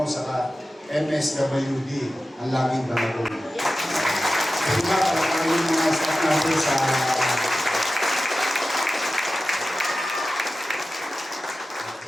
saka MSWD, ang laging balagong. Kasi ba, para kayo mga staff natin sa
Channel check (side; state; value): both; normal; correlation 0.94